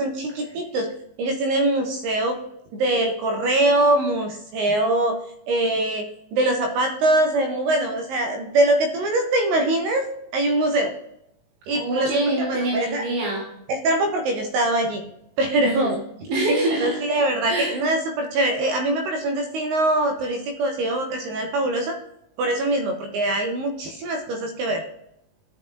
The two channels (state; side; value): late; left; 19 ms